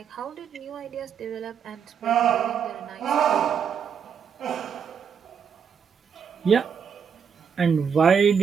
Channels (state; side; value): quieter; left; 7.1 dB